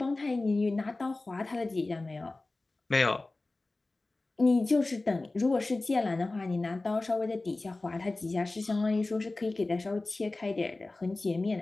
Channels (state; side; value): quieter; right; 3.1 dB